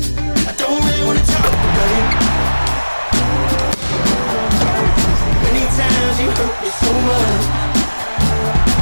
I don't really wanna talk about it. Many times you hurt me so much.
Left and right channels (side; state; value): both; inverted; correlation -1.00